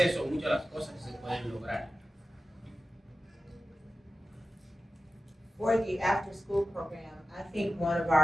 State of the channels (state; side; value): normal; both; correlation 0.94